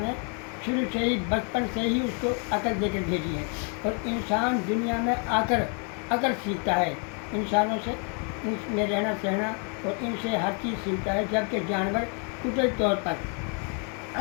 शुरू से ही बचपन से ही उसको अकल देकर भेजी है और इंसान दुनिया में आकर अकल सीखता है इंसानों से, इनमें रहना सहना और इनसे हर चीज़ सीखता है। जबकि जानवर कुदरती तौर पर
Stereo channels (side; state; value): right; quieter; 39.3 dB